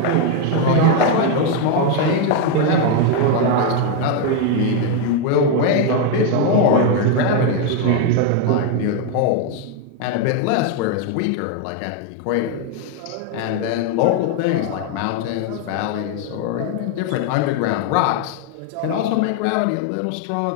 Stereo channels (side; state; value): both; different; correlation 0.01